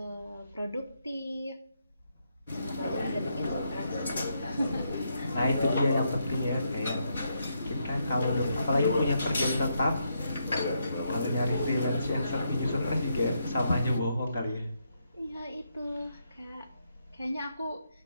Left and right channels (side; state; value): both; inverted; correlation -0.79